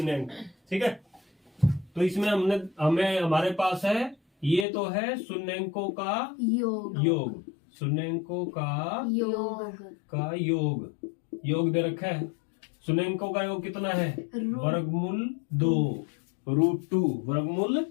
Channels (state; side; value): drops out; right; at 4.7 s